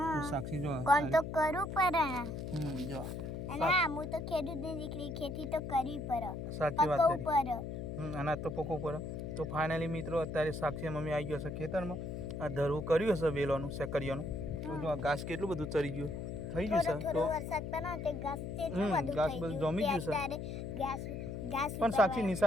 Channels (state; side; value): noise; left; hum, 6 dB below the sound